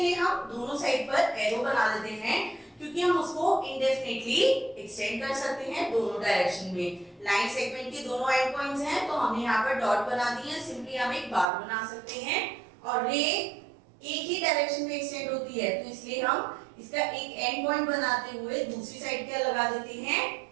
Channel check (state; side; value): drops out; left; at 11.5 s